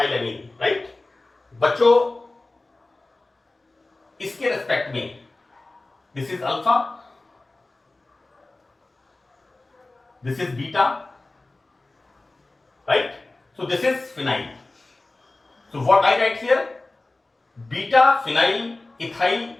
right? बच्चों, इसके रेस्पेक्ट में this is alpha, this is beta, right? So this is phenyl. So what I write here, beta-phenyl ethyl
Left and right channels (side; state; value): right; quieter; 3.0 dB